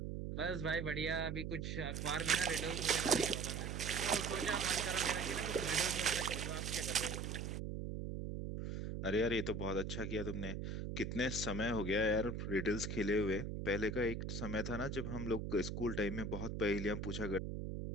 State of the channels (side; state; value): right; noise; hum, 4 dB below the sound